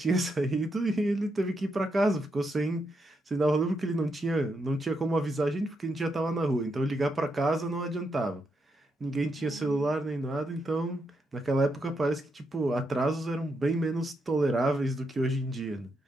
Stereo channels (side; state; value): both; normal; correlation 0.82